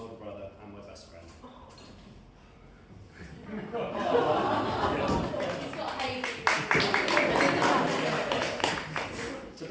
brother and my best friend.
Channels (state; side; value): identical; both; correlation 1.00